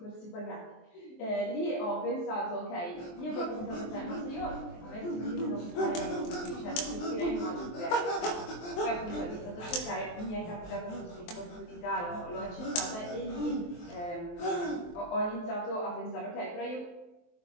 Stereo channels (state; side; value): late; right; 23 ms